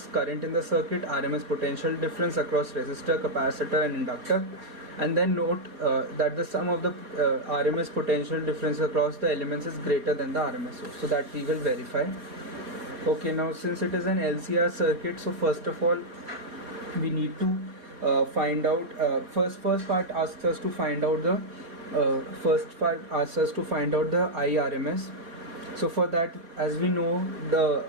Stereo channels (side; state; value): left; late; 4.2 ms